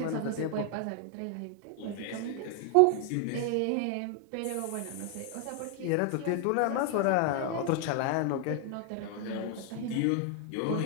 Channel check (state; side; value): different; both; correlation 0.00